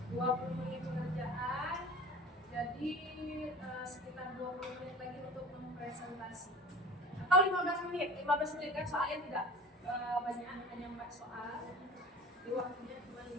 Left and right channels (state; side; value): normal; both; correlation 0.38